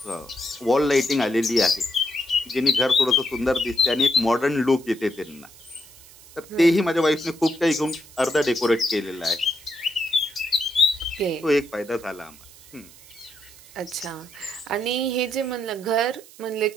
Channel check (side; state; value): right; noise; hiss, 22 dB below the sound